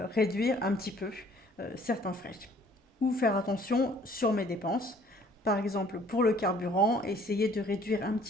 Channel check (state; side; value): normal; both; correlation 0.57